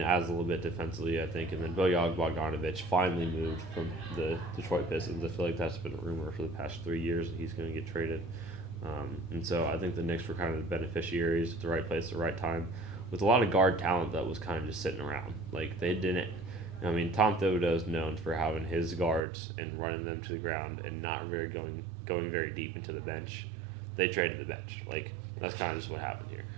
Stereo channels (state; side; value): drops out; left; at 19.2 s